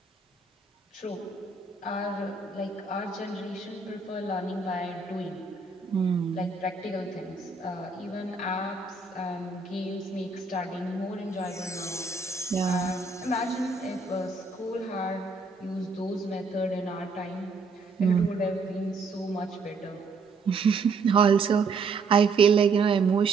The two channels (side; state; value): left; quieter; 4.2 dB